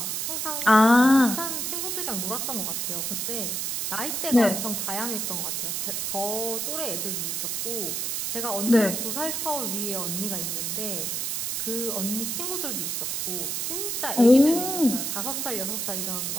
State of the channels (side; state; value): right; noise; hiss, 1 dB below the sound